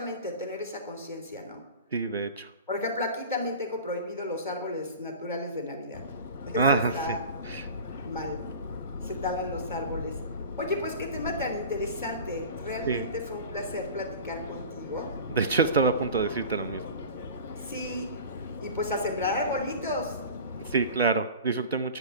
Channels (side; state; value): both; inverted; correlation -0.37